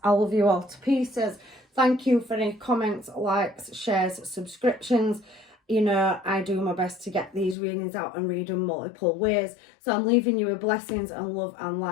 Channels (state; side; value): drops out; right; at 7.6 s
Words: I love you all to pieces. Thank you for any comments, likes, shares, subscriptions. You know, I do my best to get these readings out and read them multiple ways. So I'm leaving you with blessings and love and